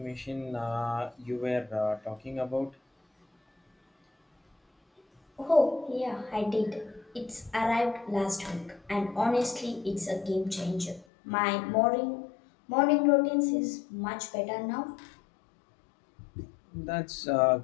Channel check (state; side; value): drops out; right; at 11.1 s